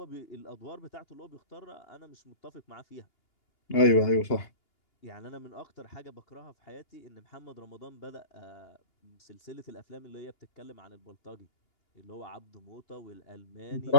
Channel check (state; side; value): late; right; 2.8 ms